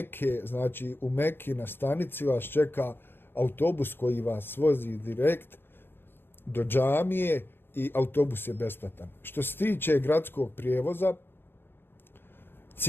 znači u Mekki na stanici vas čeka autobus koji vas vozi direkt do džamije i autobus je besplatan. Što se tiče gradskog prijevoza,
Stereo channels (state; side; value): late; right; 0.10 ms